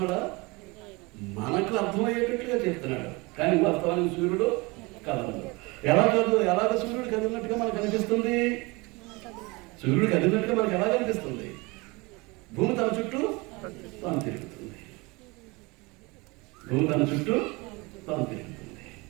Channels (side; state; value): left; quieter; 25.4 dB